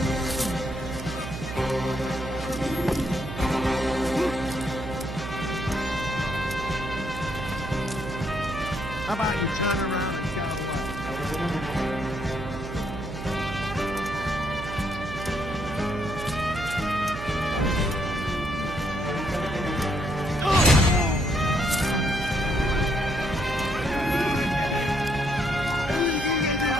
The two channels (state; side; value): noise; right; hum, 8 dB below the sound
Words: How about you turn around and go away?